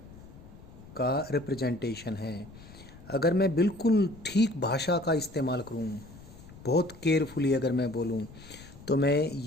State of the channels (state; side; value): noise; left; rumble, 19 dB below the sound